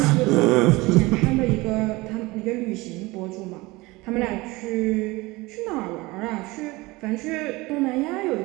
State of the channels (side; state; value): left; quieter; 22.0 dB